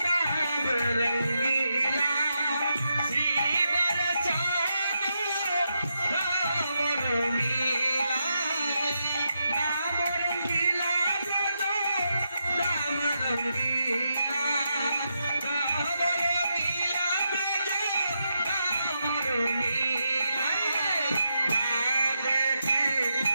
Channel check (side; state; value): both; inverted; correlation -0.83